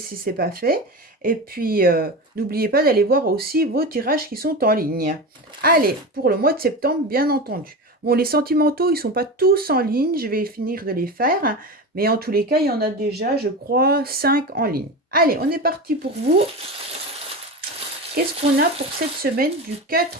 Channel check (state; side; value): normal; both; correlation 0.24